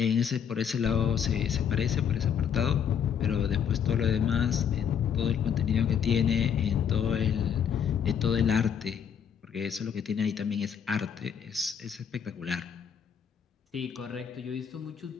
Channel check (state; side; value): quieter; right; 7.9 dB